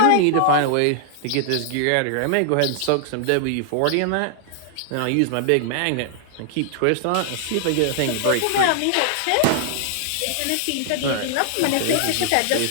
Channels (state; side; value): different; both; correlation -0.01